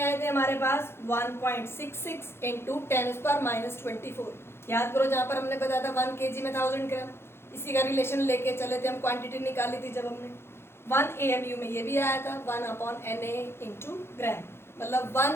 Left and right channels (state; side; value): late; right; 0.12 ms